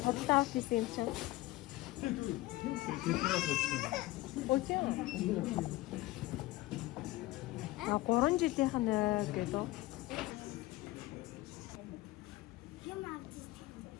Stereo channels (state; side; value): quieter; right; 18.2 dB